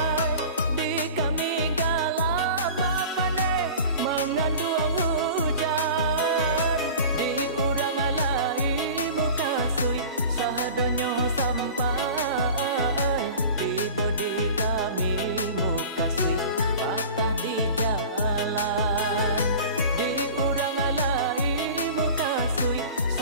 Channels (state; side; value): inverted; both; correlation -0.38